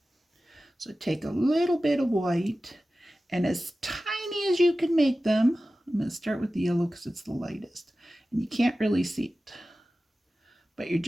So take a little bit of white, and as tiny as you can make them, I'm going to start with the yellow because it's the lightest, and you can't really see it. But you're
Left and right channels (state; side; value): normal; both; correlation 0.95